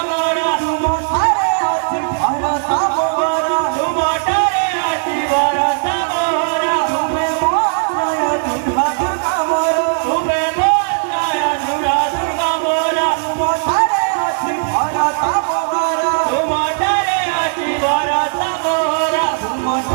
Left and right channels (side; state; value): left; silent; digital silence